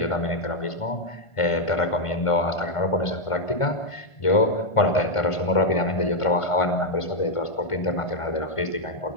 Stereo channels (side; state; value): right; late; 1.5 ms